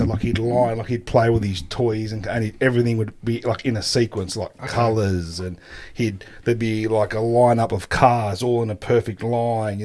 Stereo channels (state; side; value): identical; both; correlation 1.00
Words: like he'd play with his toys, and everything would be like in a sequence, like colours, and there'd be like a lineup of cars all in a perfect line. You